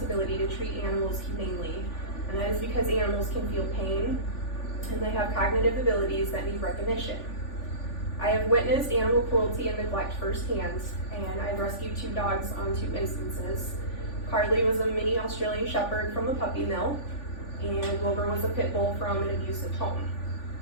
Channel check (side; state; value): right; late; 3.5 ms